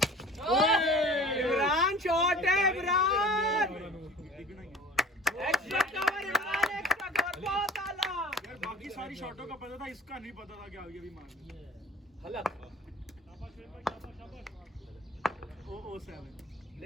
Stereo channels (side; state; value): both; normal; correlation 0.44